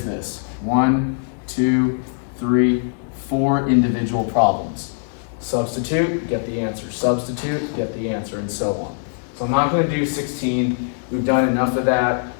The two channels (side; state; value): right; silent; 65 dB below the other